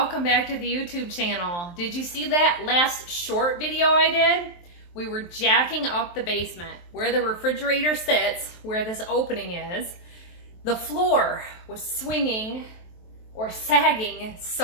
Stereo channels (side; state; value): right; late; 23 ms